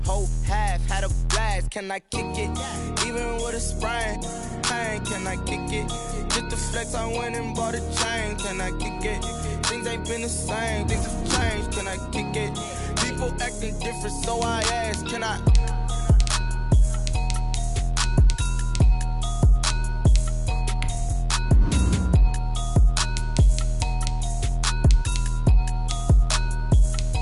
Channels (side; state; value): both; identical; correlation 1.00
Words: whole half, had a blast. Can I kick it? Even with a sprain. Pain. Can I kick it? Just the flex, I went and bought a chain. Can I kick it? Things ain't been the same. Things have changed. Can I kick it? People acting different, so I ask. Can I?